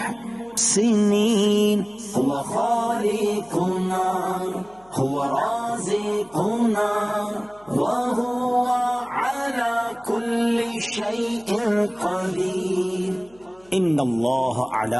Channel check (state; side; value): noise; left; hum, 30 dB below the sound